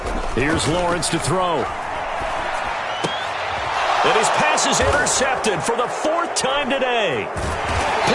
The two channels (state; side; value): identical; both; correlation 1.00